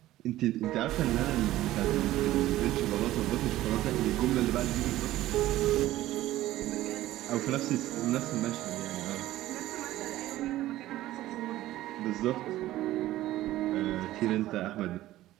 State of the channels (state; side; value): quieter; left; 15.3 dB